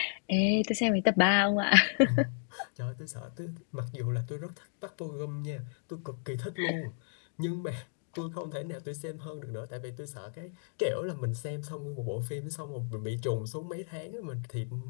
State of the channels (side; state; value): right; silent; digital silence